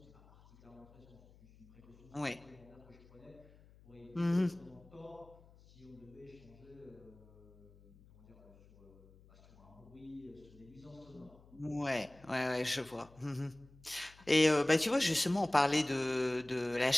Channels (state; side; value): noise; left; hum, 24 dB below the sound